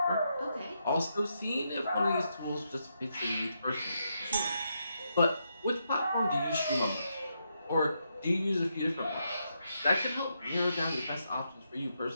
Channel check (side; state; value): both; inverted; correlation -0.81